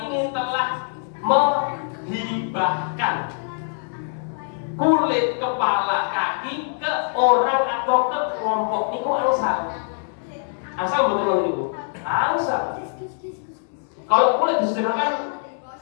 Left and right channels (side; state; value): right; silent; digital silence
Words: ini telah menghibahkan kulit, kepala, kaki ke orang atau ke kelompok niku angsal. Asal betul niku. Angsal. Kalau kulit disederhanakan